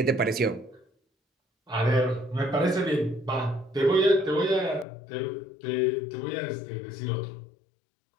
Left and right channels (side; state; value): right; drops out; at 4.9 s